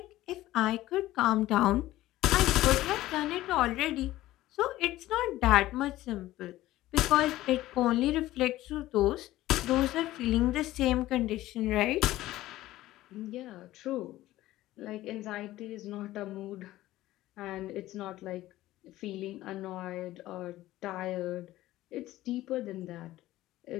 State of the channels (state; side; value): quieter; right; 15.9 dB